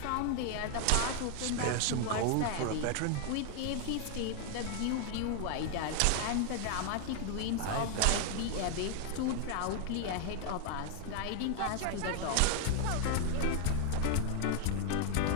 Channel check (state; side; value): different; both; correlation 0.00